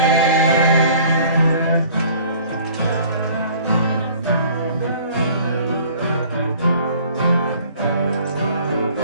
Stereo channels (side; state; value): both; inverted; correlation -0.52